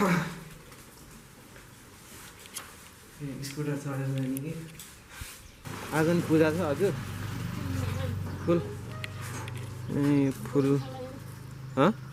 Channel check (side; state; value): both; identical; correlation 1.00